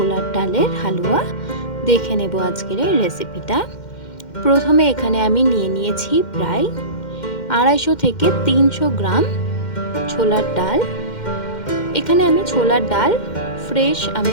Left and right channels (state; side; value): late; right; 2.1 ms